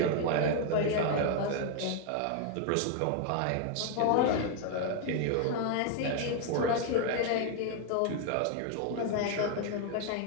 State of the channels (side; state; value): both; different; correlation 0.00